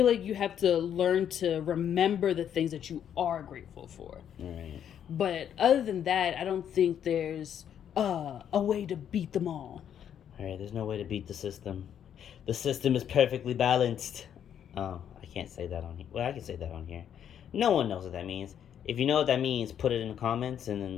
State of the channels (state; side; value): quieter; right; 9.2 dB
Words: like you have to learn to remember the things that you are grateful for. Right. But other than that, I don't think there's a way to beat them all. Alright, there's no way to beat the system. The system is perfectly balanced. Oh, I can't say that on here. Well, I can say that on here. No one knows what that means. If you know what that means, put it in the comments and